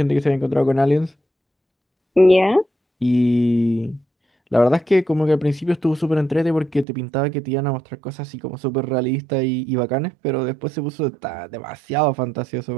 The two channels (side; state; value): left; drops out; at 6.9 s